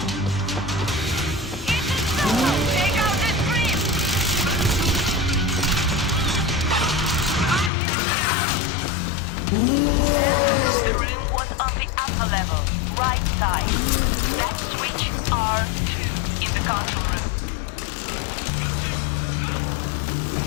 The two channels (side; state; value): right; drops out; at 7.7 s